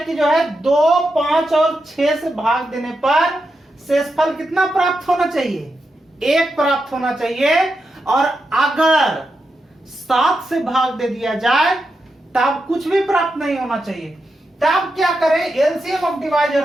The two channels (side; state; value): both; normal; correlation 0.87